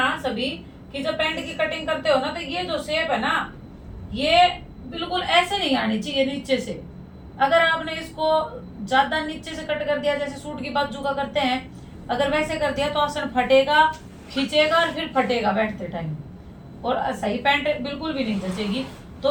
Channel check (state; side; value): identical; both; correlation 1.00